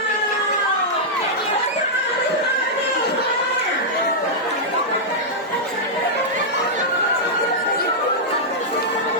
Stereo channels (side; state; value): both; normal; correlation -0.08